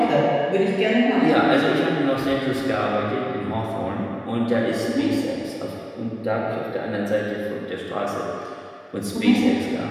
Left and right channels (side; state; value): both; identical; correlation 1.00